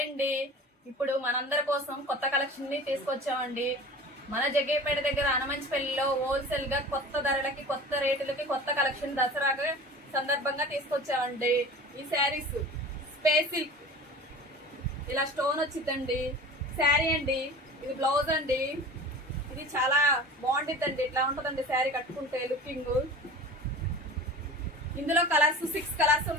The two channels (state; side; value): normal; both; correlation 0.38